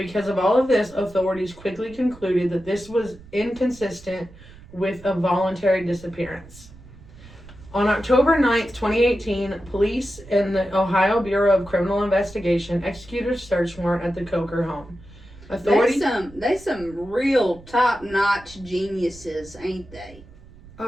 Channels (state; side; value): noise; right; rumble, 21 dB below the sound